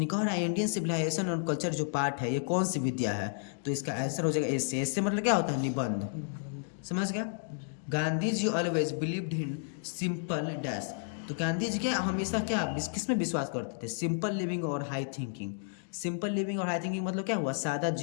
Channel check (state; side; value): silent; right; digital silence